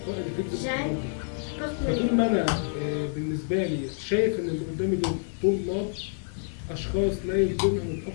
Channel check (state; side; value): silent; right; 60 dB below the other